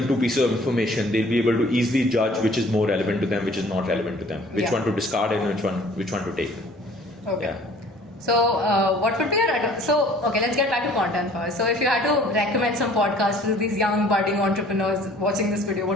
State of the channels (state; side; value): normal; both; correlation 0.53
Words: 2 pieces of information, they'll be able to easily judge which is more relevant to them, which is not relevant to them, which one to discard and which one to take. Okay. Yeah. So what would be let's get back to content first. So if you had to recommend some podcasts to these young budding entrepreneurs watching this video,